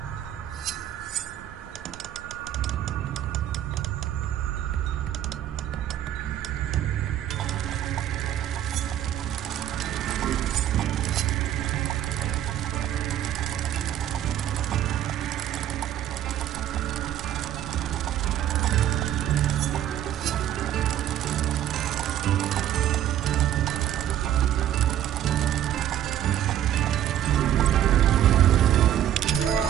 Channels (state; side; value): quieter; left; 11.3 dB